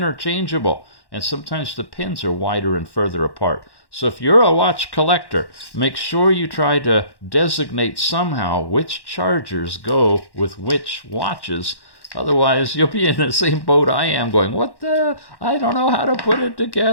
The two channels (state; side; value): late; right; 1.1 ms